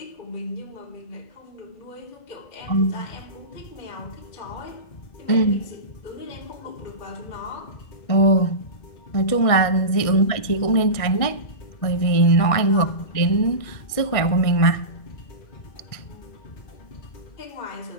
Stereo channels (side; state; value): right; late; 1.6 ms